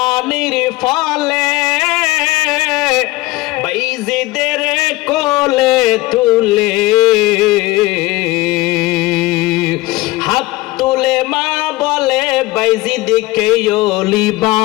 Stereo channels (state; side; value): quieter; right; 19.9 dB